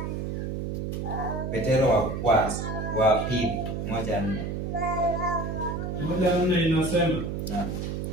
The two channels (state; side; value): noise; right; hum, 3 dB below the sound